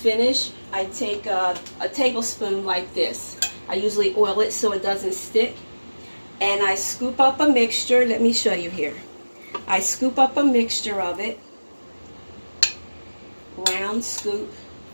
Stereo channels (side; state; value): both; inverted; correlation -1.00